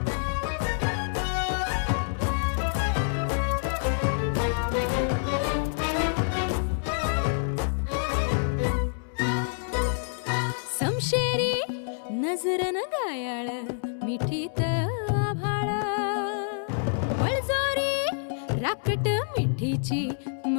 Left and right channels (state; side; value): silent; right; 60 dB below the other